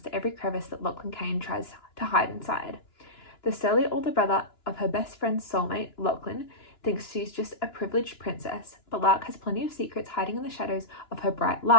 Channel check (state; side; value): late; right; 2.9 ms